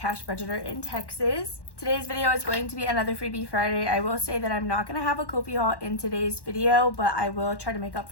budgeter in Texas. Today's video is going to be another freebie Friday. I will say that I'm not going to have a Ko-fi haul in today's video, but I will try to make up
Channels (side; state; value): right; late; 1.1 ms